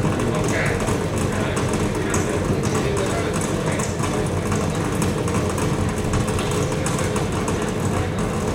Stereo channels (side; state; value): both; identical; correlation 1.00